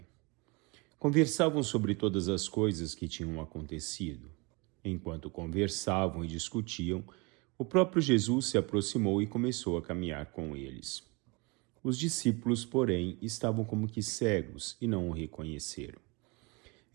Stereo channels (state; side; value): quieter; left; 28.4 dB